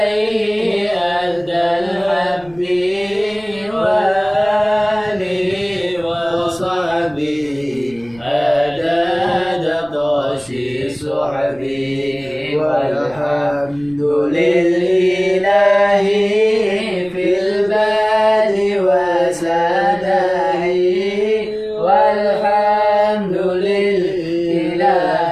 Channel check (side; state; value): right; noise; rumble, 25 dB below the sound